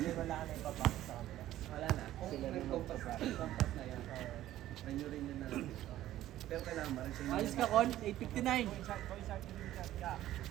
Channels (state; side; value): quieter; left; 13.7 dB